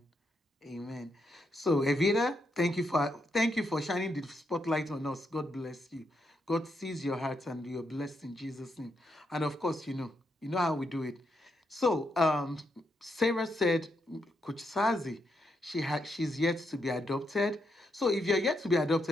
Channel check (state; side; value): normal; both; correlation 0.80